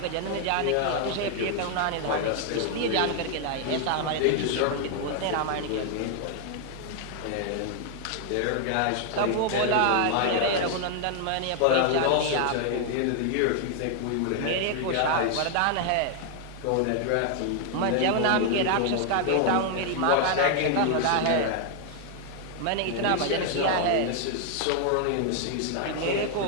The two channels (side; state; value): both; different; correlation 0.00